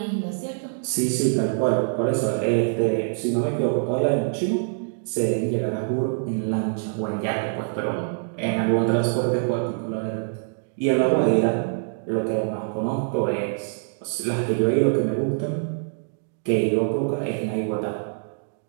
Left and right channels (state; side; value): silent; left; digital silence